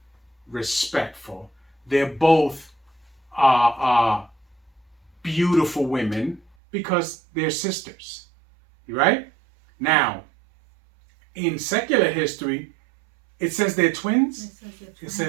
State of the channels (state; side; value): drops out; left; at 6.5 s